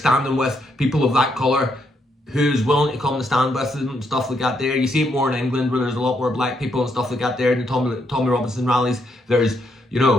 with people of that colour who's willing to come and stand with them and stuff like that there. You see it more in England where there's a lot more black people and stuff like that there in the Tommy Robinson rallies. There's,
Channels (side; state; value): both; normal; correlation 0.76